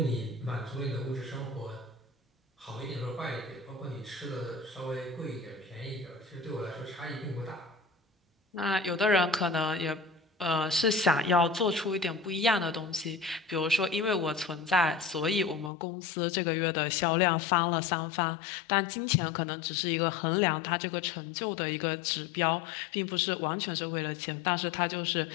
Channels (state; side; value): drops out; right; at 15.7 s